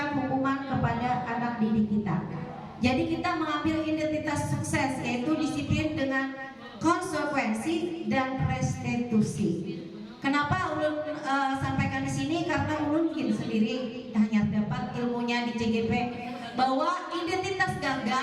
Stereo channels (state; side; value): identical; both; correlation 1.00